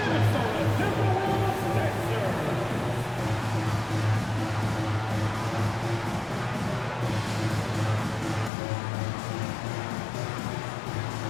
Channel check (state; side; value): drops out; right; at 8.5 s